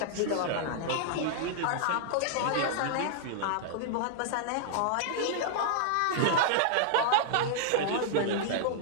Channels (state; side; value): different; both; correlation -0.01